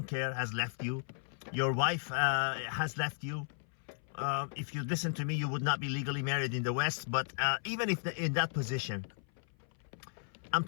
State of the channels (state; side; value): silent; right; 54 dB below the other